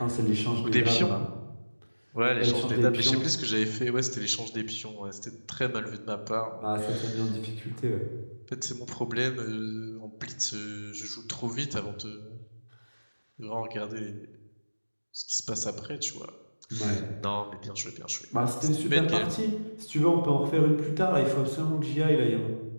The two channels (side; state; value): both; inverted; correlation -1.00